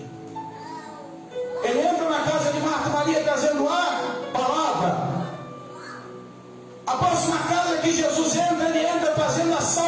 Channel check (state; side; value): identical; both; correlation 1.00